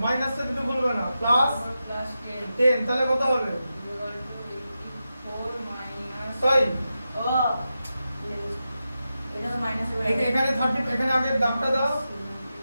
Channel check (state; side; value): inverted; both; correlation -0.90